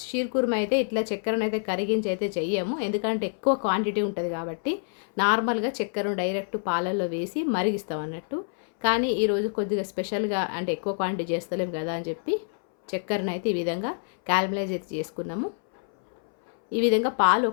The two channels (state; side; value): silent; right; 60 dB below the other